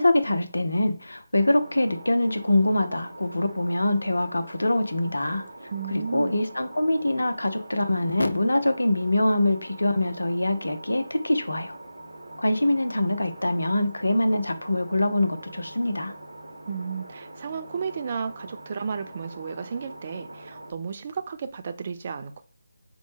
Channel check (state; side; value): inverted; both; correlation -0.93